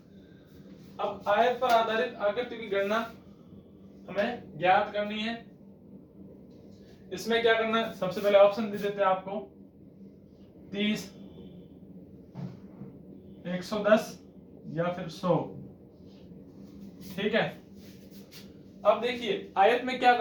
अब आयत पर आधारित आकृति की गणना हमें ज्ञात करनी है। इसमें क्या करना है? सबसे पहले ऑप्शन दे देते हैं आपको, 30, 110 या फिर 100। ठीक है। अब देखिए आयत में क्या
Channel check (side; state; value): both; identical; correlation 1.00